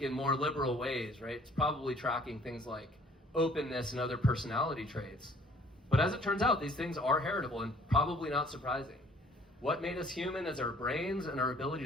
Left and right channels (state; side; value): normal; both; correlation 0.57